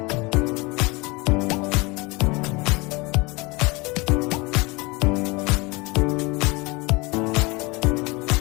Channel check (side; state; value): right; quieter; 25.8 dB